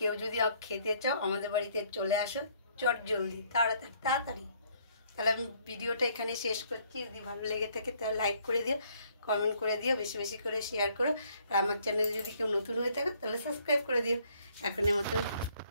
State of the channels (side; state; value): both; inverted; correlation -0.64